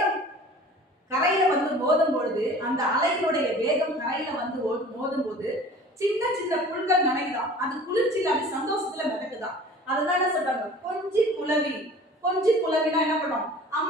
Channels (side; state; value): both; normal; correlation 0.44